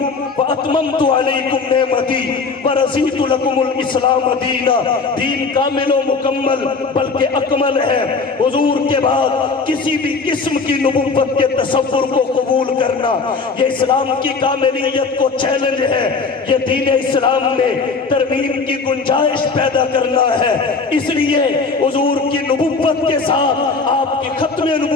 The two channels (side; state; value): right; quieter; 4.4 dB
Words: واتممت علیکم نعمتی ورضیت لکم الاسلام دینا۔ دین کامل و مکمل بلکہ اکمل ہے۔ حضور کے بعد کسی بھی قسم کی نبوت کے تصور کو قبول کرنا یہ اسلام کی کاملیت کو چیلنج ہے۔ یہ دین اسلام میں ترمیم کی گنجائش پیدا کرنا ہے۔ اس لیے حضور کی نبوت کے ساتھ آپ کی ختم